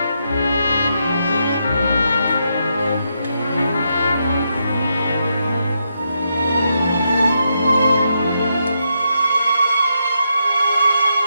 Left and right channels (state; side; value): inverted; both; correlation -0.81